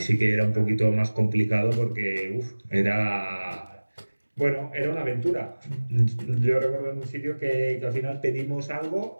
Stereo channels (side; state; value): both; inverted; correlation -1.00